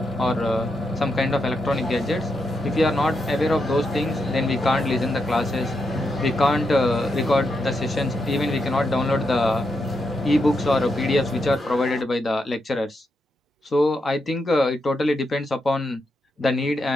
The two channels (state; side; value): normal; both; correlation 0.83